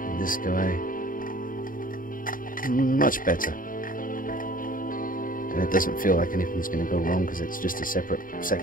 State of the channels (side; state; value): right; late; 0.40 ms